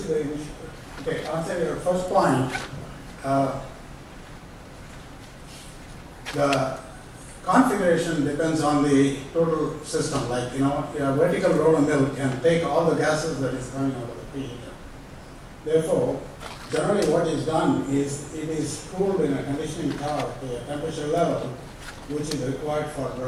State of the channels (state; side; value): identical; both; correlation 1.00